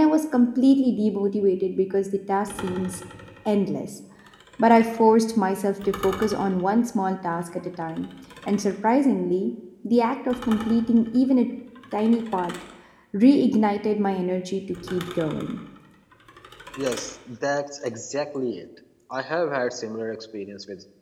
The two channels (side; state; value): both; identical; correlation 1.00